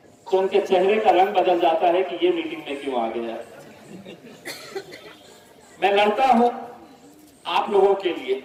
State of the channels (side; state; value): both; identical; correlation 1.00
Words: तो उनके चेहरे का रंग बदल जाता है कि ये मीटिंग में क्यों आ गया। मैं लड़ता हूं आप लोगों के लिए,